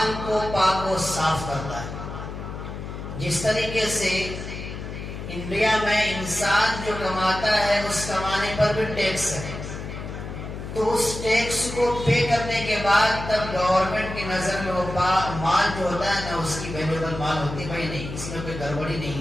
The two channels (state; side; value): noise; left; hum, 8 dB below the sound